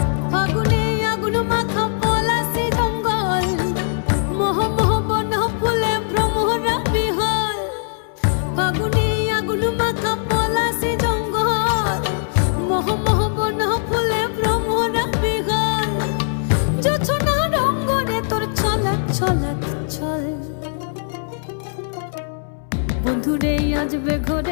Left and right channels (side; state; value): right; silent; 62 dB below the other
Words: ফাগুনে আগুন মাখা পলাশি জঙ্গল, মোহ মোহ বন ফুলে ভ্রমরা বিহল। ফাগুনে আগুন মাখা পলাশি জঙ্গল, মোহ মোহ বন ফুলে ভ্রমরা বিহল। জোছনা রঙ্গনে তোর ছলক ছলক ছল। বন্ধুরে আজবে